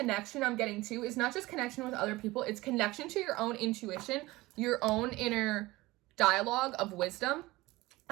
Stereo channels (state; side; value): quieter; left; 19.8 dB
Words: I'm getting to is not just connection with other people, it's connection to your own intuition, your own inner dialogue of wisdom,